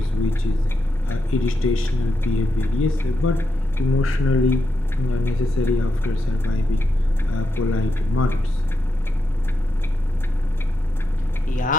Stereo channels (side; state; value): both; normal; correlation 0.85